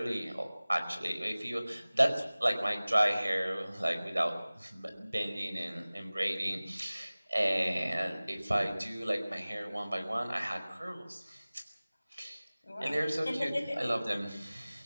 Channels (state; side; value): inverted; both; correlation -0.99